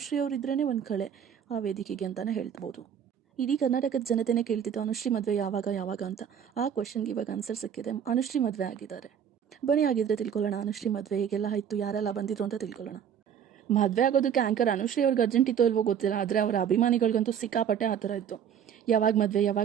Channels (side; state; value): left; quieter; 8.5 dB